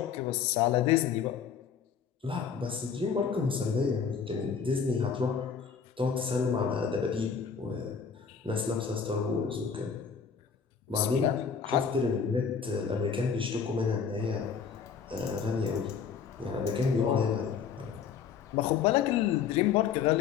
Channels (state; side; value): quieter; right; 6.6 dB